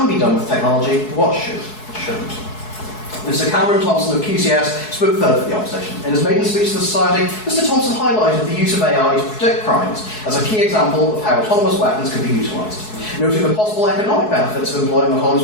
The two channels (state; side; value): late; right; 4.7 ms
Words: be done with technology, but what shouldn't. Mr. Cameron Thompson of QCS spoke third for the opposition. In his maiden speech to the Society, Mr. Thompson highlighted the use of AI to predict crimes as a key example of how autonomous weapons could be utilised. Noting the possible economic benefits of employing